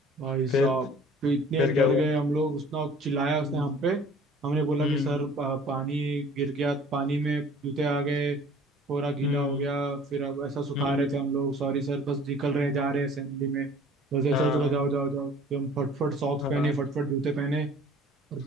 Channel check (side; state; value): both; normal; correlation 0.50